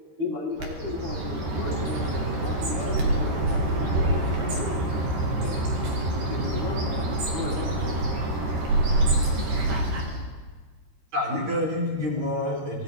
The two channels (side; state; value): left; late; 14 ms